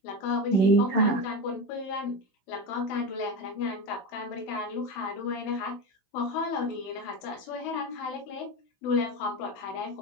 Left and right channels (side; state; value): right; late; 16 ms